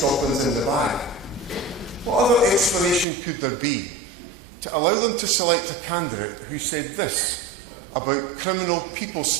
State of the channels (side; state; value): left; drops out; at 3.1 s